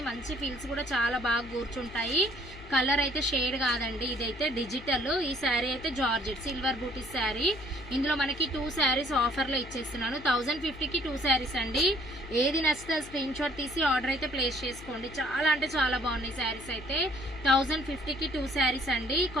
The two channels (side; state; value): left; noise; hum, 17 dB below the sound